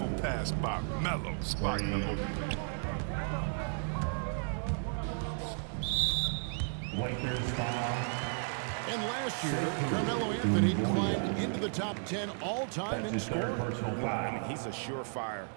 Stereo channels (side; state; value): left; silent; 55 dB below the other